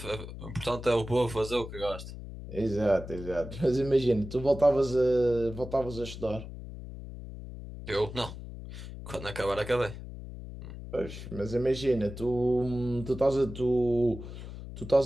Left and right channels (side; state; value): left; noise; hum, 11 dB below the sound